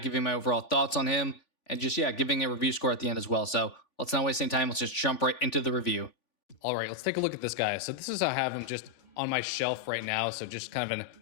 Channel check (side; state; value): right; late; 3.5 ms